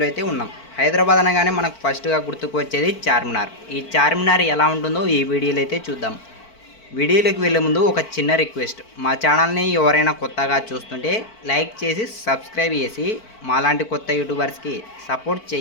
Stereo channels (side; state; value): right; late; 4.5 ms